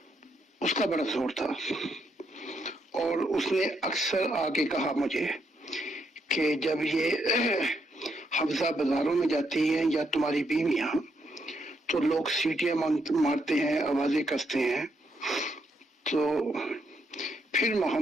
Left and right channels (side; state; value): both; normal; correlation 0.77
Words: اس کا بڑا زور تھا، اور اس نے اکثر آ کے کہا مجھے کہ جب یہ حفظہ بازاروں میں جاتی ہیں یا تمہاری بیویاں تو لوگ سیٹیاں مارتے ہیں، آوازیں کستے ہیں. تو پھر